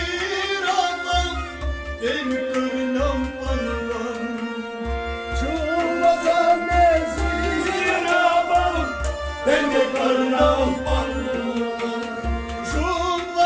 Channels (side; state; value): both; identical; correlation 1.00